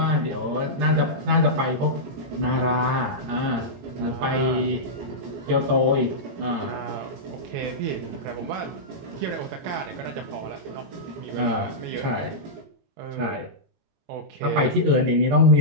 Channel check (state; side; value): late; left; 22 ms